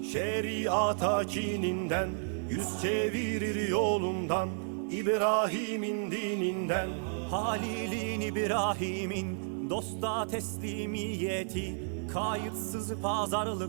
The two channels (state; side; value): silent; left; 56 dB below the other